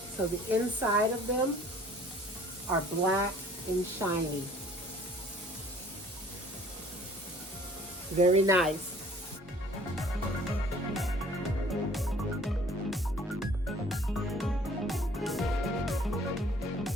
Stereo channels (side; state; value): both; normal; correlation 0.53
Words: the inside of them are black and shiny. Very nice.